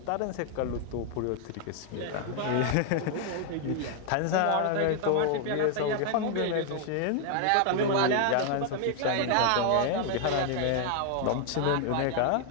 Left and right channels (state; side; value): different; both; correlation 0.00